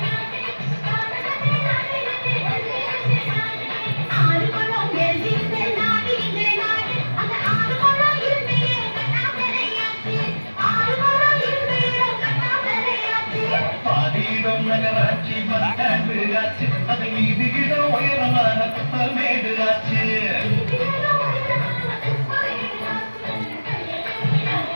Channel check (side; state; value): both; inverted; correlation -1.00